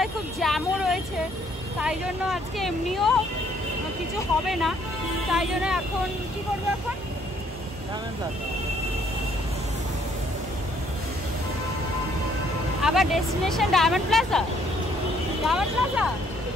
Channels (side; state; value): both; normal; correlation 0.65